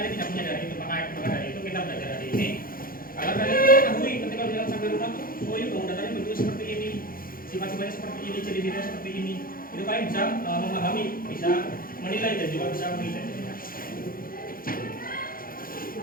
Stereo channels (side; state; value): right; late; 0.42 ms